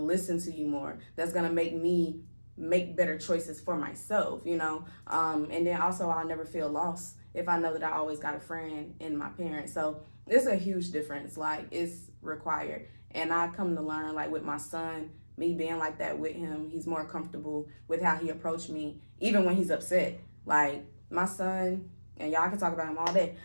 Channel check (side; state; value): both; inverted; correlation -1.00